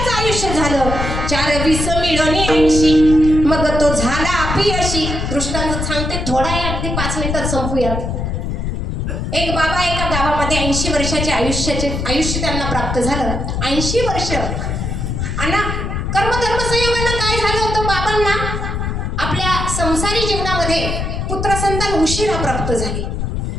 आयुष्य झालं. 4 मिळवणे 80. मग तो झाला अपयशी. दृष्टांत सांगते थोडा आहे अगदी 5 मिनिटात संपूयात. एक बाबा एका गावामध्ये 80 वर्षाचे आयुष्य त्यांना प्राप्त झालं. 80 वर्ष. आणि कर्मधर्म संयोगानं काय झालं होतं बाबांना आपल्या संसारी जीवनामध्ये पुत्रसंतान उशिरा प्राप्त झाले.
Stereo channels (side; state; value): left; noise; rumble, 2 dB below the sound